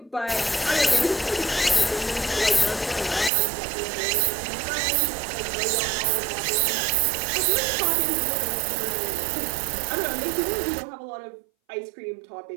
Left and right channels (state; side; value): drops out; left; at 3.3 s